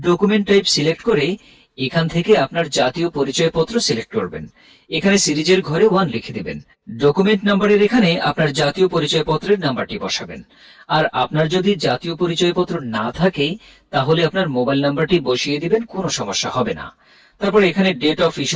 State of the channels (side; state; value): both; identical; correlation 1.00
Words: টাইপ সিলেক্ট করে এখান থেকে আপনার জাতীয় পরিচয়পত্র সিলেক্ট করবেন। এখানে সিরিজের ঘরে 1 লিখে দেবেন। ডকুমেন্ট নাম্বারের এখানে আপনার জাতীয় পরিচয়পত্রের নাম্বারটি বসাবেন। আর আপনার যদি জাতীয় পরিচয়পত্র না থাকে, তাহলে আপনার মোবাইল নাম্বারটি বসিয়ে দিবেন, কোনো সমস্যা হবে না। তারপর এখানে ডেট অফ